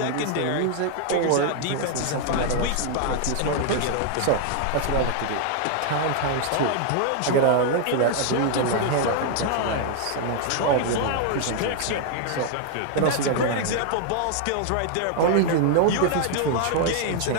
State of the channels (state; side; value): different; both; correlation 0.00